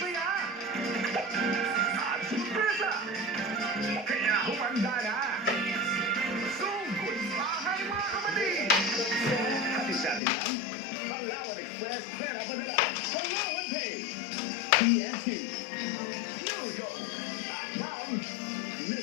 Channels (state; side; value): drops out; right; at 10.2 s